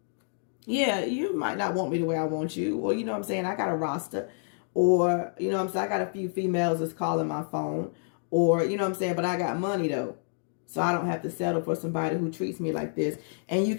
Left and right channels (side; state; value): right; silent; digital silence